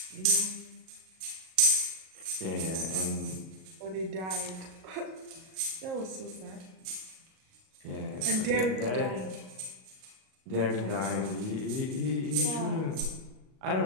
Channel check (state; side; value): late; left; 37 ms